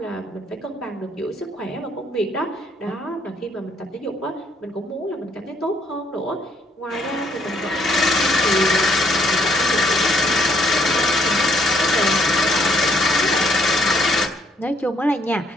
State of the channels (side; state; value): both; normal; correlation 0.68